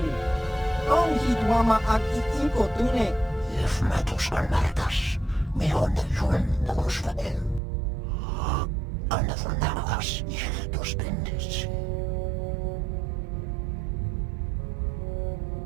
Tong hit wama agi inko tune. If matos alertas, me on yun nagusvael. Another namagas ihtos bendis.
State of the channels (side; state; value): left; drops out; at 7.6 s